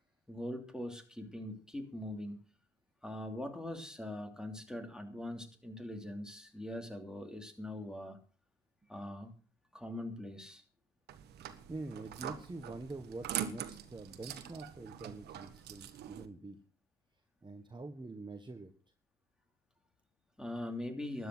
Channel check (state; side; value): normal; both; correlation 0.66